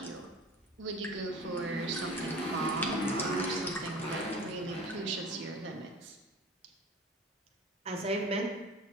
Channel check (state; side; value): normal; both; correlation 0.39